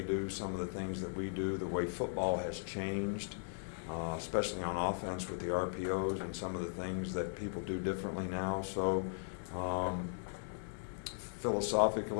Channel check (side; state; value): right; silent; digital silence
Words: do, some of the things that we do, the way football has changed. Especially on offense with the RPOs and some of the things that people do differently now. So